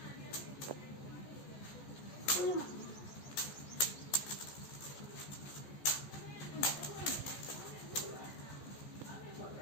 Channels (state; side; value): late; right; 14 ms